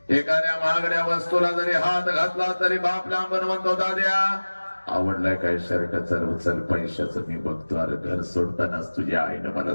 एखाद्या महागड्या वस्तूला जरी हात घातला तरी बाप लांबून म्हणतो दाद्या आवडलाय काय शर्ट, चल चल पैशाचं मी बघतो. अरे घर सोडतानाच तुझ्या आईनं मला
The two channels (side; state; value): both; inverted; correlation -1.00